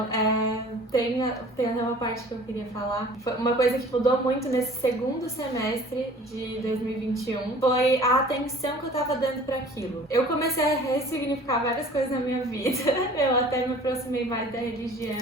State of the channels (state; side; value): normal; both; correlation 0.47